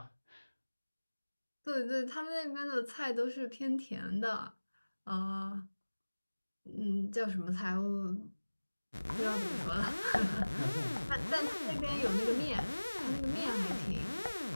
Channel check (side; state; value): both; inverted; correlation -1.00